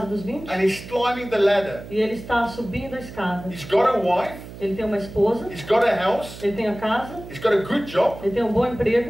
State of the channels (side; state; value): right; noise; hum, 14 dB below the sound